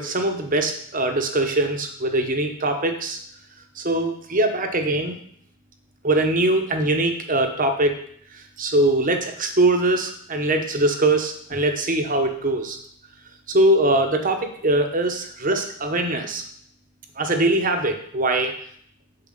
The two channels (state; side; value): normal; both; correlation 0.09